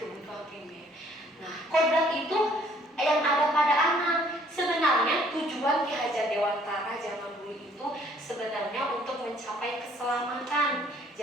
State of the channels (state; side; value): normal; both; correlation 0.61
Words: primer. Nah, kodrat itu yang ada pada anak. Sebenarnya tujuan Ki Hajar Dewantara zaman dulu itu sebenarnya untuk mencapai keselamatan.